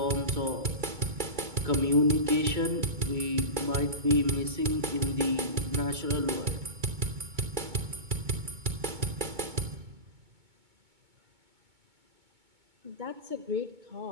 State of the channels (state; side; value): late; left; 2.2 ms